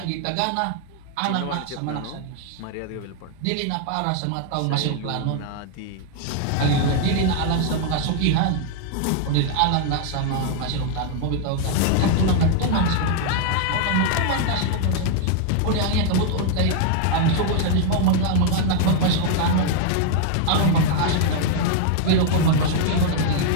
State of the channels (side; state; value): both; different; correlation 0.00